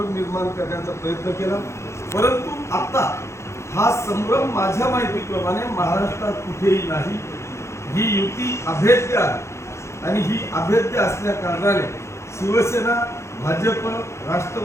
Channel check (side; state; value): right; late; 0.13 ms